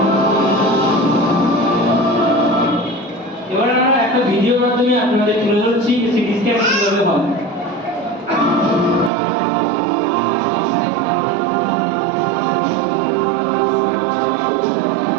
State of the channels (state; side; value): drops out; left; at 9.1 s